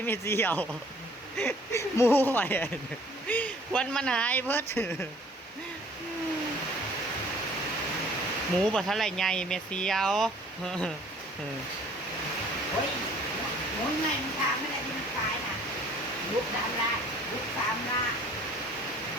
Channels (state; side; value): normal; both; correlation 0.54